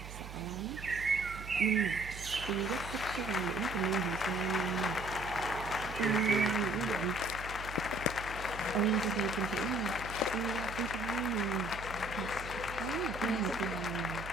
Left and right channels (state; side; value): noise; right; hum, 11 dB below the sound